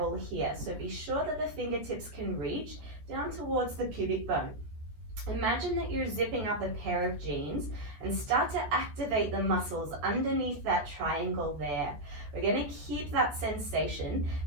here. So be sure that the fingertips can reach down towards the pubic bone. Imagine that you're zipping up a pair of jeans and start to activate the muscles underneath that triangle there. We're going to keep that sensation,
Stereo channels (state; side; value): late; left; 14 ms